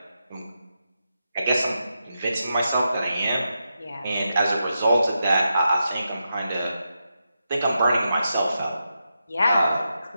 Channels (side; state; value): both; inverted; correlation -0.87